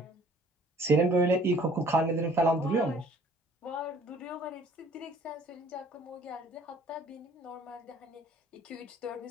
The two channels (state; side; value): normal; both; correlation 0.55